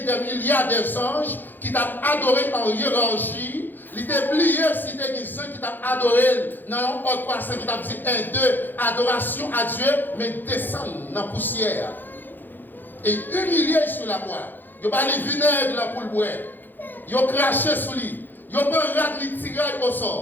milliards d'anges qui t'ont adoré en hiérarchie, l'oublier si tu as des gens qui t'ont adoré dans un autre passage qui t'a dit 1, 2, adoration à Dieu, mais descendre dans la poussière. Et humilier sur la croix. Ils ont parlé vinaigre là pour le boire. Ils ont craché sur lui. Ils ont pas tiré au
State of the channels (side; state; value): right; late; 0.089 ms